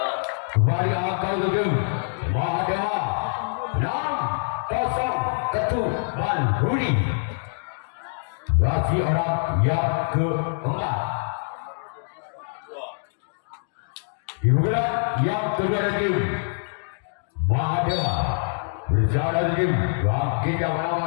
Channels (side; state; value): right; silent; digital silence